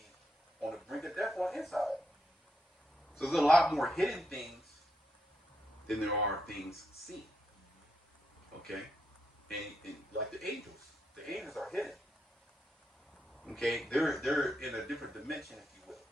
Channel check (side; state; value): both; normal; correlation 0.81